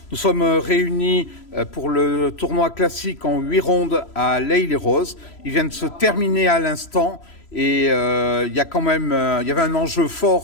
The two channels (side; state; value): right; late; 3.0 ms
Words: Nous sommes réunis pour le tournoi classique en 8 rondes à l'Haye-les-Roses. Il vient de se terminer à l'instant et il y avait un enjeu